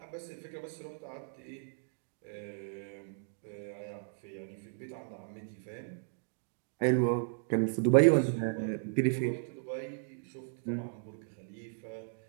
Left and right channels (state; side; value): silent; left; digital silence